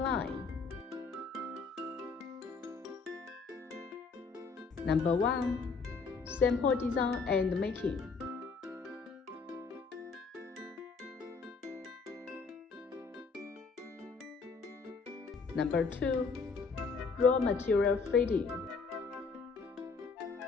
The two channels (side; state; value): right; quieter; 4.8 dB